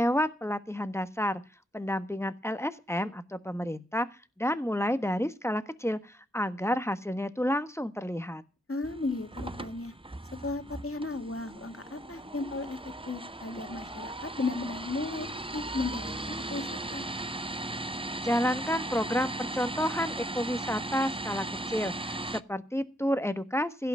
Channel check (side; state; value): both; normal; correlation 0.73